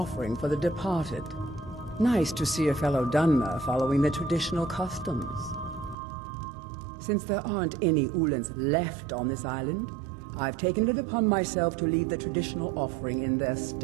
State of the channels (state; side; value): drops out; left; at 6.0 s